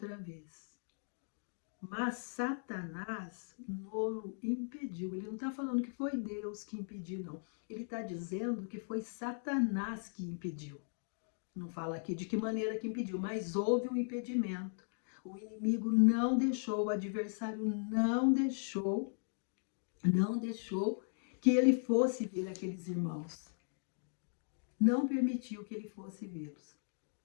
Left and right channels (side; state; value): right; silent; digital silence